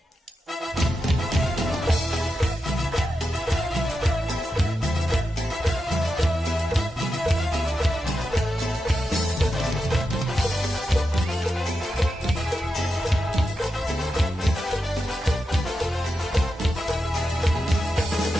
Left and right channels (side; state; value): both; normal; correlation 0.88